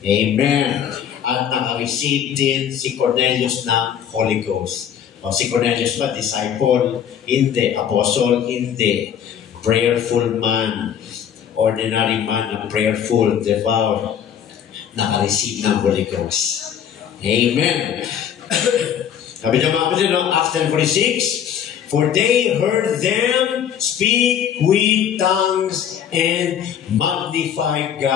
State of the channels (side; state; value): right; quieter; 9.0 dB